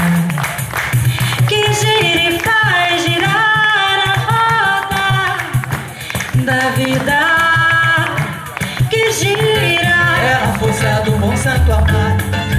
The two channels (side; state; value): both; identical; correlation 1.00